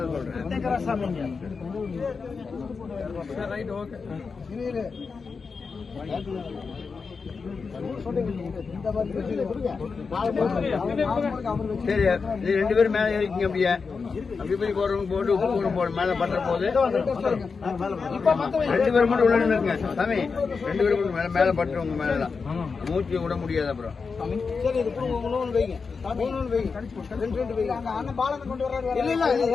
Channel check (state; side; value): quieter; right; 5.0 dB